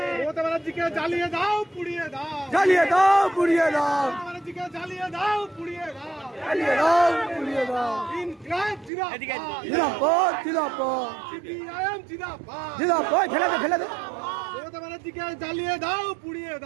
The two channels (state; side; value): drops out; left; at 8.9 s